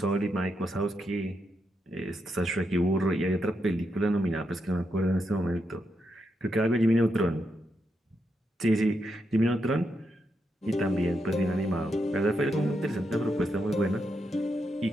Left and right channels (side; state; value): both; normal; correlation 0.83